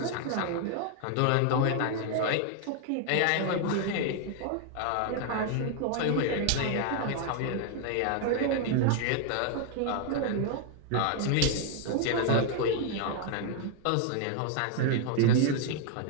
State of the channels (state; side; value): different; both; correlation 0.00